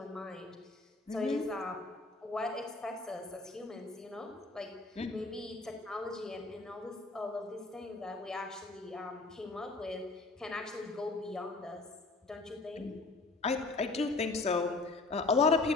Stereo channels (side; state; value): right; quieter; 3.5 dB